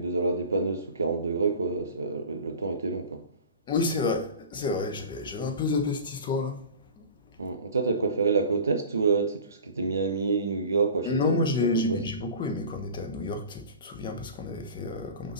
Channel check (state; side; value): inverted; both; correlation -0.37